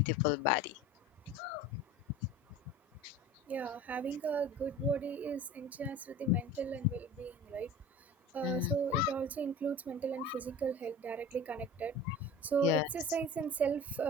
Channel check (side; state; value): both; normal; correlation 0.37